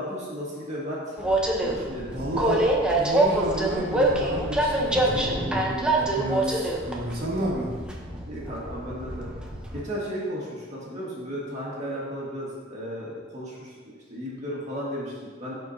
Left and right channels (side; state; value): both; normal; correlation 0.41